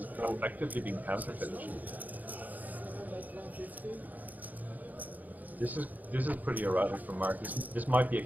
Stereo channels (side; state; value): left; late; 0.081 ms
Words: effectively been counterfeited. This is pretty erratic from Mark. This might be a